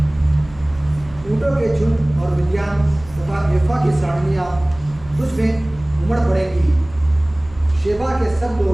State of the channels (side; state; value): right; noise; hum, 21 dB below the sound